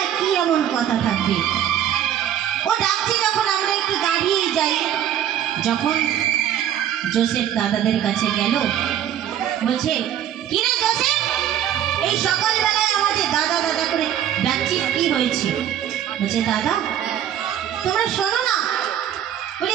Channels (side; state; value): left; quieter; 10.4 dB